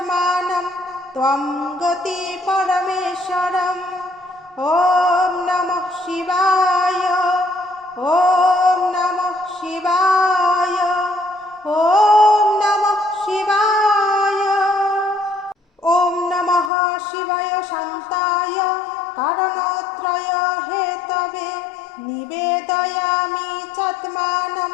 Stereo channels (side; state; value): right; drops out; at 16.7 s